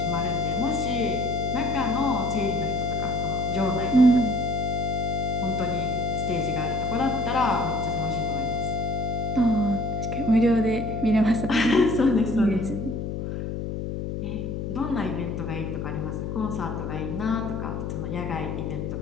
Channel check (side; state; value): left; noise; hum, 4 dB below the sound